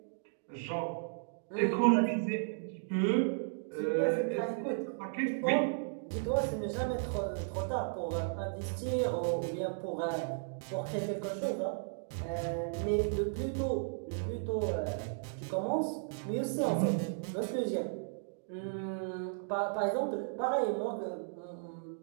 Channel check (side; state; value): left; silent; digital silence